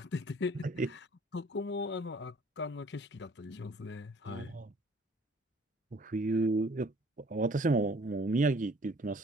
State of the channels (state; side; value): normal; both; correlation 0.56